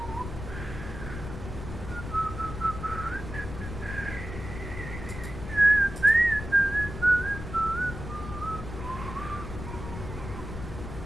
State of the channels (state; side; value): noise; left; rumble, 9 dB below the sound